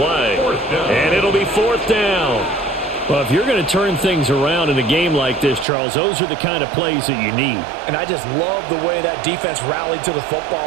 And it'll be fourth down. Well, if you're going to turn things around in a game like this, Charles, those are the kind of plays that you need. And I just love the way that defense rallied to the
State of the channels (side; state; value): left; drops out; at 5.7 s